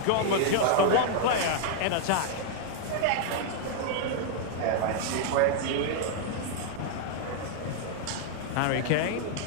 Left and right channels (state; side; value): different; both; correlation -0.01